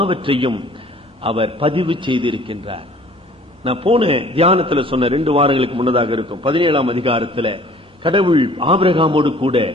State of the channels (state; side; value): normal; both; correlation 0.52